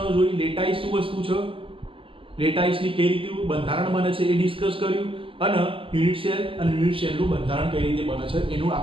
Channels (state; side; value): late; left; 0.26 ms